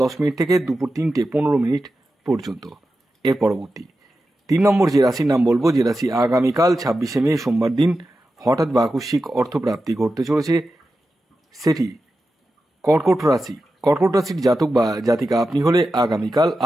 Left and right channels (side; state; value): both; normal; correlation 0.92